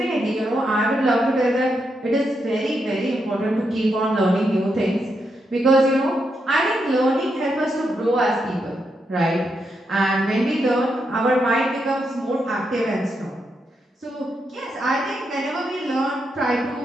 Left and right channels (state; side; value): normal; both; correlation 0.82